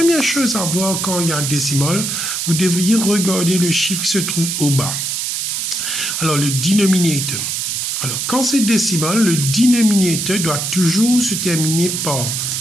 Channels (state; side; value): noise; right; hiss, 2 dB below the sound